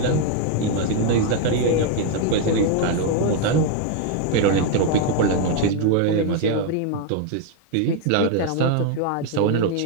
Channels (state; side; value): different; both; correlation 0.01